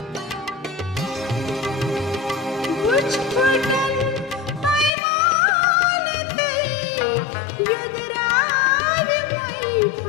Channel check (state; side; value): drops out; right; at 4.9 s